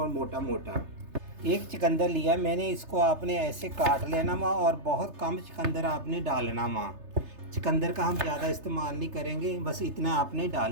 मोटा मोटा। एक चुकंदर लिया मैंने, इसको आपने ऐसे काट लेना माँ, और बहुत कम चुकंदर आपने डालना माँ। चुकंदर का हम ज़्यादा इस्तेमाल नहीं करेंगे, बस इतना आपने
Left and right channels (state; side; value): late; left; 3.3 ms